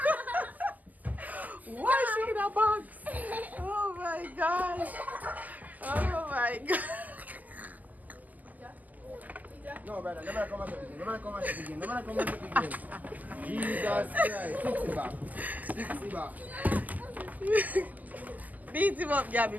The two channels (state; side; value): late; left; 0.080 ms